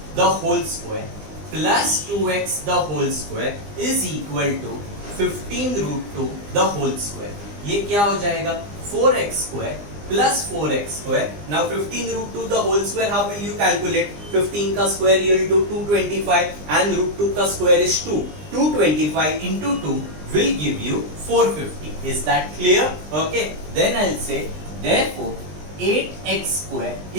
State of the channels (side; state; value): left; late; 20 ms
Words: the whole square plus 2x the whole square is equal to 15 root 2 the whole square. ये क्या हो जाएगा? 4x square plus 4x square. Now 15 root 2 the whole square, how will you calculate? 15 का square you will do 225 and root 2 का square is 2. 225 into 2 will give you 450. Is that clear? Okay. Then I'll say therefore 8x square